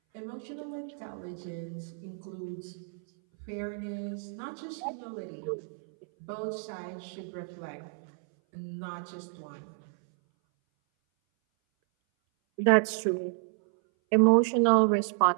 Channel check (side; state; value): left; silent; 57 dB below the other